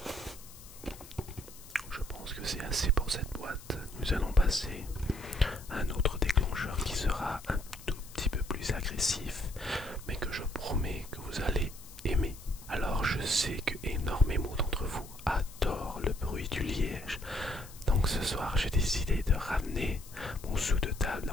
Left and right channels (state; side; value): noise; left; hiss, 18 dB below the sound